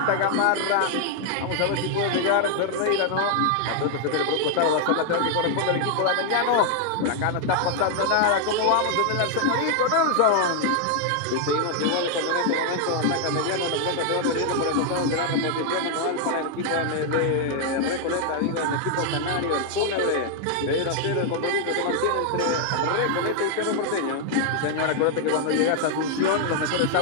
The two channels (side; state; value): both; different; correlation 0.00